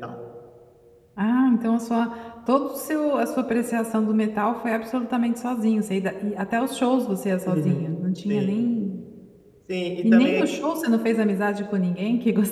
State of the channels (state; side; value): identical; both; correlation 1.00